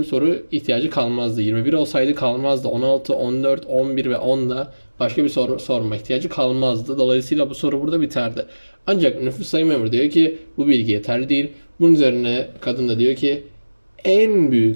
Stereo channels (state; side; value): inverted; both; correlation -1.00